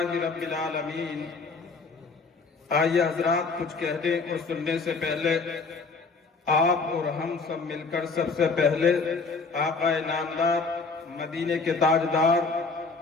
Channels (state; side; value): quieter; right; 4.3 dB